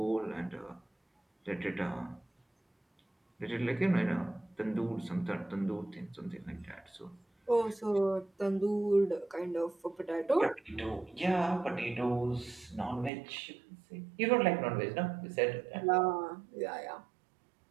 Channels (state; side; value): drops out; left; at 13.1 s